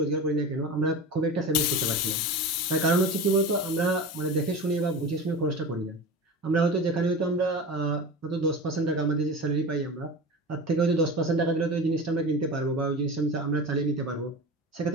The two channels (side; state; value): both; normal; correlation 0.30